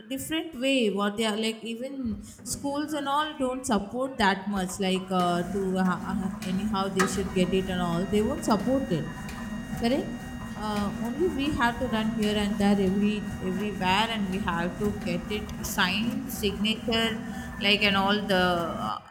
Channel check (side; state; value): both; identical; correlation 1.00